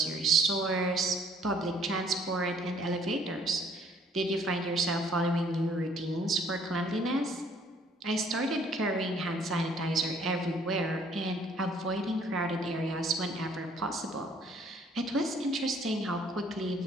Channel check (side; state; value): both; normal; correlation 0.60